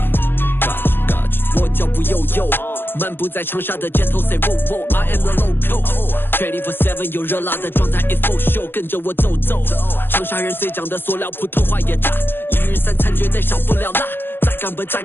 我脚步悠悠，漫步在长沙的街头 ，Say whoa whoa，I am the local。24/7有热辣的状态 ，It's full show， 跟着我走走。长沙人最讲的塑料，普通话也炸，一日三餐绝对少不了辣。再干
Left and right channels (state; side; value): late; right; 0.099 ms